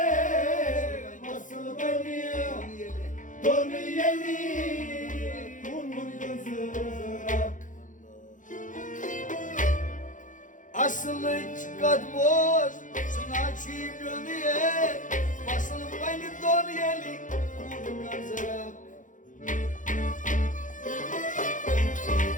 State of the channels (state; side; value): late; right; 0.37 ms